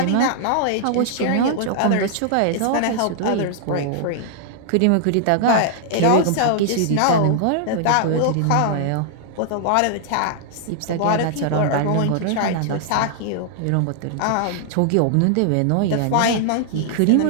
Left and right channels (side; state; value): both; different; correlation -0.01